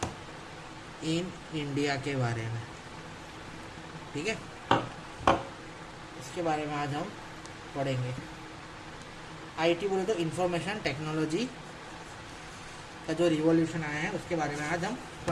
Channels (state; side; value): identical; both; correlation 1.00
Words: इन इंडिया के बारे में, ठीक है। इसके बारे में आज हम पढ़ेंगे। आईटी बोले तो इंफॉर्मेशन टेक्नोलॉजी का जो रिवॉल्यूशन आया है उसके बारे में आज हम